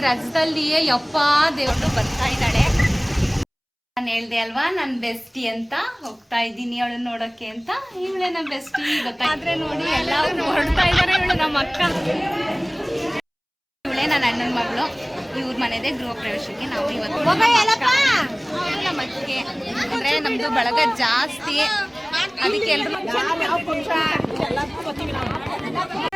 ರಜದಲ್ಲಿ. ಯಪ್ಪ ದೇವ್ರು ಬರ್ತಾ ಇದ್ದಾಳೆ. ನಾನು ಹೇಳ್ದೆ ಅಲ್ವಾ ನನ್ನ ಬೆಸ್ಟಿ ಅಂತ. ಹೋಗ್ತಾ ಇದ್ದೀನಿ ಅವಳು ನೋಡೋಕ್ಕೆ ಅಂತ. ಇವಳೆ ನನ್ನ ಬೆಸ್ಟಿ ಗೊತ್ತಾದ್ರೆ ನೋಡಿ ಎಲ್ಲ ಹೊರಡ್ತಾ ಇದ್ದಾರೆ. ಇವಳು ನಮ್ಮ ಅಕ್ಕ, ಇವಳೆ ನನ್ನ ಅಣ್ಣನ ಮಗಳು. ಇವ್ರ ಮನೆದೇ ಗೃಹ ಪ್ರವೇಶಕ್ಕೆ ನಾವು ಇವತ್ತು ನಮ್ಮ ಅತ್ತಿಗೆ ಅಂದ್ರೆ ನಮ್ದು ಬಳಗ ಜಾಸ್ತಿ, ಅದಕ್ಕೆ ಎಲ್ರು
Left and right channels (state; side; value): identical; both; correlation 1.00